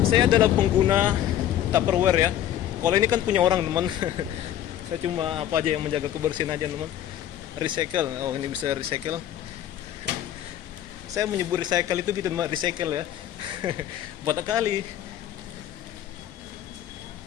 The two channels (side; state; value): right; quieter; 11.4 dB